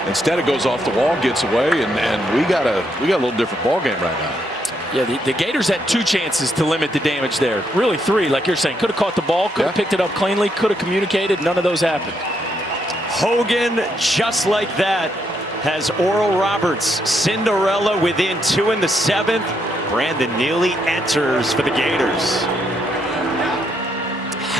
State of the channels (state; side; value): normal; both; correlation 0.76